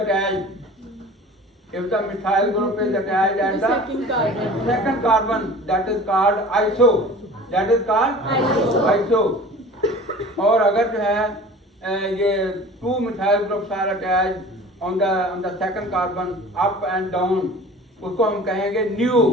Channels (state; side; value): normal; both; correlation 0.42